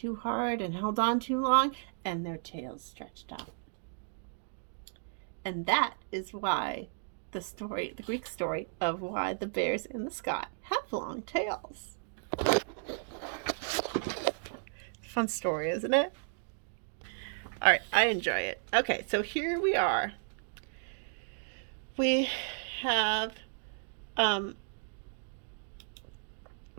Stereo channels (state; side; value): silent; left; digital silence